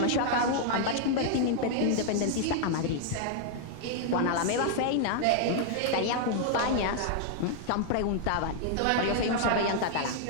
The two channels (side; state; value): both; different; correlation 0.00